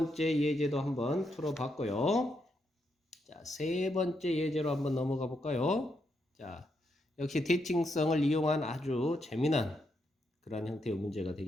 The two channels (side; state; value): both; normal; correlation 0.80